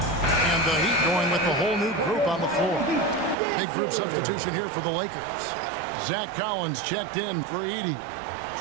The Heat going with the whole new group on the floor. Big group substitution here for the Lakers. Zach Collins checked in for Edey.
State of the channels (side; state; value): left; drops out; at 3.4 s